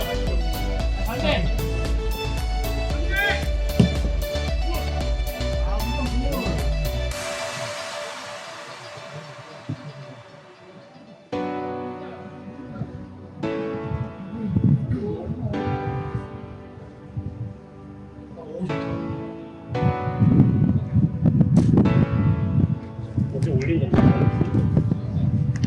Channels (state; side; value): identical; both; correlation 1.00